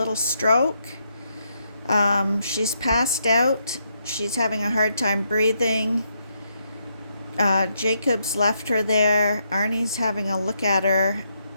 stroke. She's passed out. She's having a hard time breathing. Jacob's left her there. Arnie's having a look at her.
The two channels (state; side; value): inverted; both; correlation -0.78